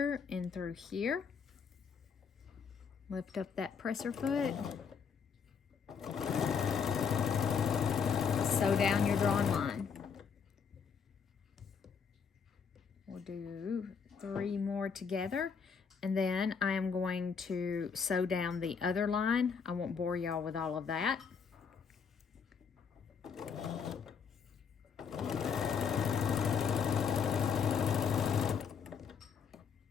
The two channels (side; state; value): right; quieter; 6.4 dB